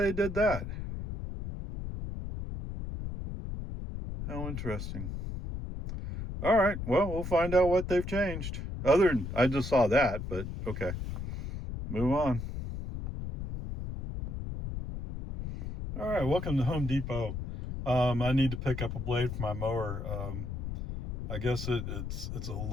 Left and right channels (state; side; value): noise; left; rumble, 6 dB below the sound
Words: they did that. How interesting. All right, well, we'll find out what they've changed. Other than, I just saw that, but okay. Move on. All right, welcome to Home Depot. I need to pick up a blade for my mower. I guess it's a